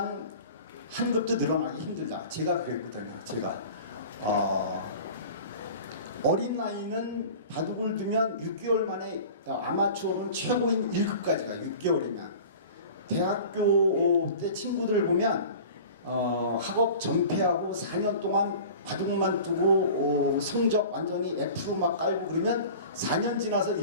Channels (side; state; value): both; inverted; correlation -0.40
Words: 한 급도 늘어나기 힘들다. 제가 그랬거든요. 제가 어린 나이는 바둑을 두면 6개월 만에 아마추어는 최고인 1급까지 가. 6개월이면 대학교 때 친구들 보면 학업 전폐하고 4년 동안 바둑만 두고 성적 완전히 F로 막 깔고 그러면 4년 지나서